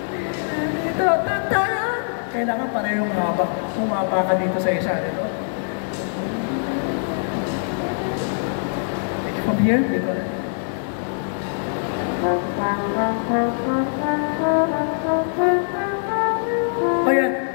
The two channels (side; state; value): right; silent; digital silence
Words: Ta ta ta. Kailangan parehong mahaba. Bumaba ka dito sa isa. Dito. From here, dito na. Ayan.